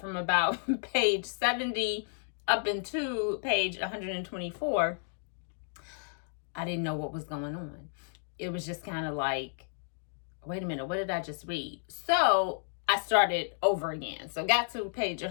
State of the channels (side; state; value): right; silent; digital silence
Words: about page 70 up into page 124, I didn't know what was going on. It was just kind of like, wait a minute, what did I just read? So I started over again. So got to page